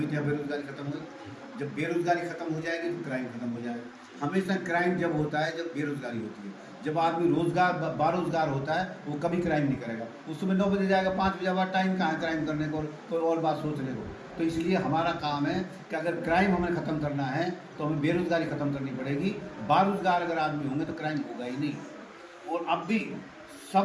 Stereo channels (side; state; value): both; identical; correlation 1.00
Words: यहाँ बेरोजगारी खत्म होगी। जब बेरोजगारी खत्म हो जाएगी तो क्राइम खत्म हो जाएगा। हमेशा क्राइम जब होता है जब बेरोजगारी होती है। जब आदमी बेरोजगार होता है वो कभी क्राइम नहीं करेगा। उस समय 9 बजे जाएगा, 5 बजे बाद टाइम कहाँ है क्राइम करने को, कोई और बात सोचने को। तो इसलिए हमारा काम है कि अगर क्राइम हमें ख़त्म करना है तो हमें बेरोजगारी ख़त्म करनी पड़ेगी। बेरोजगार अगर आदमी होंगे तो क्राइम होगा ही नहीं। और अब भी